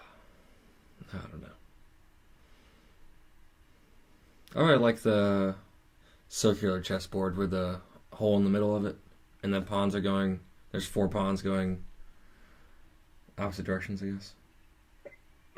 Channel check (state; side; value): identical; both; correlation 1.00